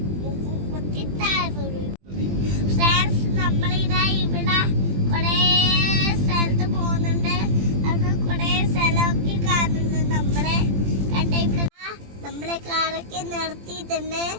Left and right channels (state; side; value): late; left; 20 ms